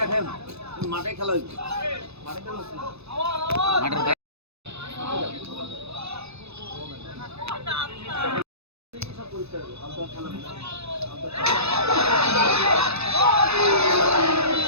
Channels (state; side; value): late; left; 0.79 ms